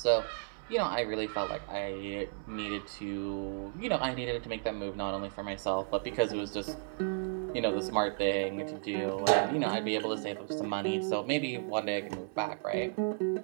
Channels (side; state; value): left; silent; digital silence